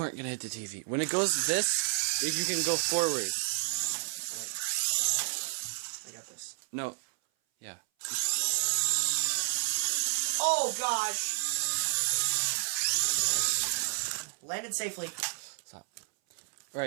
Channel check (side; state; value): left; silent; 57 dB below the other